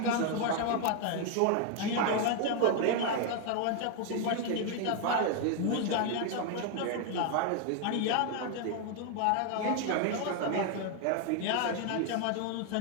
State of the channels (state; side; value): different; both; correlation 0.00